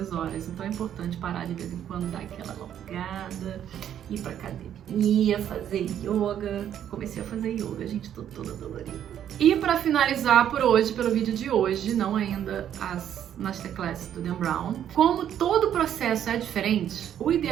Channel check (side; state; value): left; quieter; 10.1 dB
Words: horas, então é importante parar de vez em quando, dar aquela alongada, ir pra academia, fazer yoga. Comecei a fazer yoga, gente, tô toda dolorida. E para finalizar por hoje, pelo vídeo de hoje, não ainda as Masterclass do Dan Brown, como todo processo é diferente, o